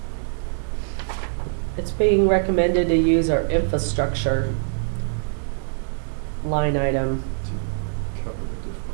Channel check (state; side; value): silent; left; 63 dB below the other